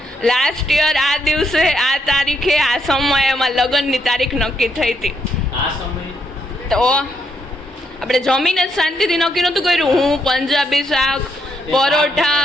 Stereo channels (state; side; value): normal; both; correlation 0.76